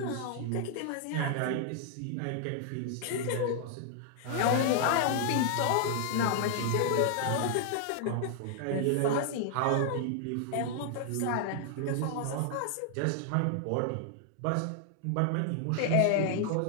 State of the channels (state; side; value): different; both; correlation 0.00